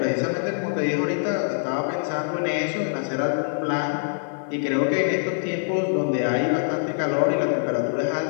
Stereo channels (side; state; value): right; silent; 62 dB below the other